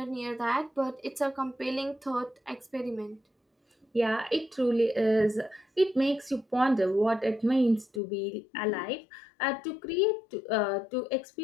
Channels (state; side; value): drops out; right; at 8.0 s